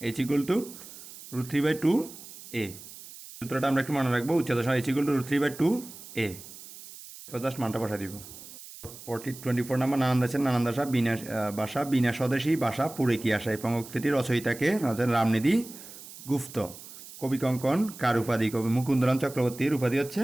h=√3/2 a। সূত্রটা আমরা একটু মনে রাখবো, উচ্চতা সমান h=√3/2 a। এরপর জাস্ট মানটা বসা দিব। 24 নাম্বার, নানান দেশের নানান ভাষা বিনা স্বদেশী ভাষা পুরে কি আসা। এই পঙ্ক্তিটির রচয়িতাকে রামনিধি গুপ্ত। কবি কঙ্কন কার উপাধি? কবি মুকুন্দরাম চক্রবর্তীর উপাধি হচ্ছে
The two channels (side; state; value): right; noise; hiss, 16 dB below the sound